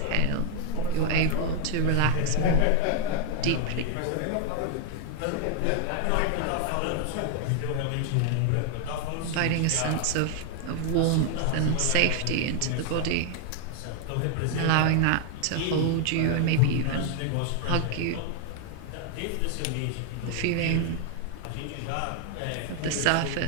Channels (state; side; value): different; both; correlation 0.00